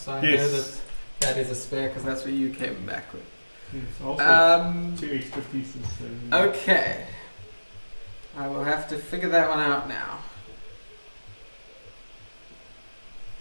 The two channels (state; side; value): inverted; both; correlation -1.00